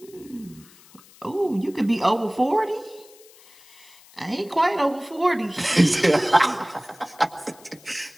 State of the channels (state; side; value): noise; left; hiss, 25 dB below the sound